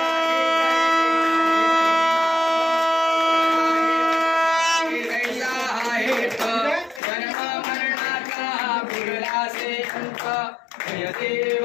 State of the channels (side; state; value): right; drops out; at 7.0 s